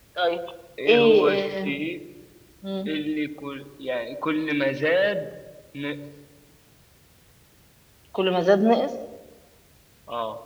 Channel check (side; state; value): both; identical; correlation 1.00